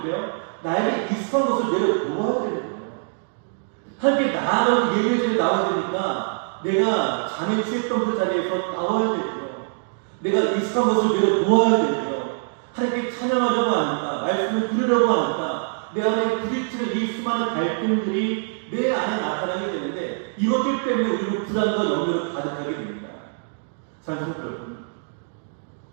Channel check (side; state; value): left; silent; digital silence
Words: 돼요? 나에게 익숙한 것을 내려놓아야 되는 거예요. 하나님께 나아가고 예배에 나와야 되니까 내가 잠에 취했던 그 자리에서 나와야 되고요, 내가 익숙한 것을 내려놓아야 되고요, 하나님께 찬양하려고 하니까, 말씀을 들으려고 하니까 내 안에 부딪히는 이 수많은 갈등들이 내 안에 나타나게 되는데, 이것들 때문에 우리는 불안과 염려를 가득하게 됩니다. 사랑하는